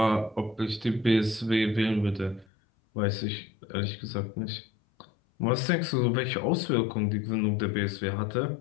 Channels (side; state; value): right; drops out; at 2.5 s